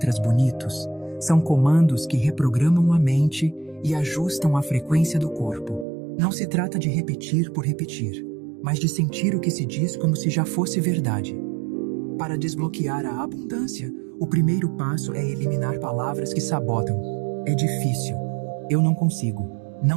bonitos, são comandos que reprogramam a mente e ajustam a frequência do corpo. Não se trata de repetir por repetir, mas de sentir o que se diz como se já fosse verdade. Para desbloquear a abundância, o primeiro passo é eliminar palavras que sabotam. É difícil. Eu não consigo.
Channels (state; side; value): drops out; left; at 5.9 s